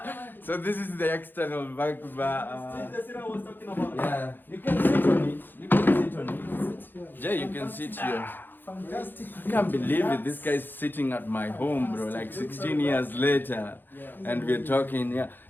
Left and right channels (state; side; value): late; right; 0.093 ms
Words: So this is the external back bar. That's what I was talking about. Yeah, you can sit on it. Jay, you can sit here. Fantastic. I can't believe it. This guy's sitting at my home, bro. Like 16 years later, and we're talking. Yeah,